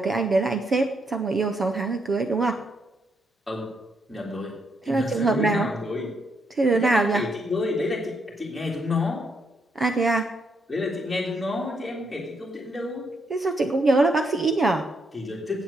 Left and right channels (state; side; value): normal; both; correlation 0.77